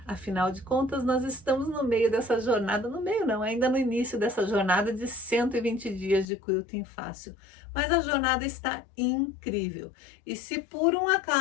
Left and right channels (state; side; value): drops out; right; at 6.2 s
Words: Afinal de contas, nós estamos no meio dessa jornada, no meio não, ainda no início dessa jornada de 120 dias de quilting fácil. Mas a jornada está incrível. E se por um